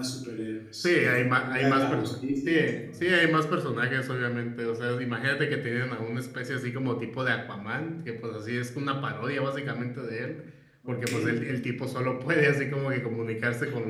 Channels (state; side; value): identical; both; correlation 1.00